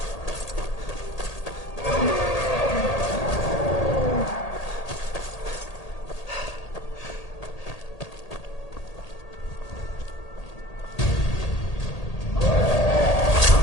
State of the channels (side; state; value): right; late; 1.8 ms